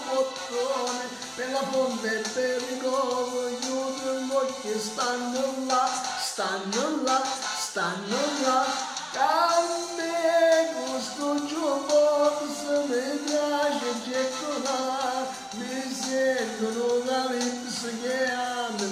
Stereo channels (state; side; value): identical; both; correlation 1.00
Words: bottone, per la fonte e per il covo, gli udri che stanno là, a me questo jukebox mi piace gettonare, mi sentono da lips che mi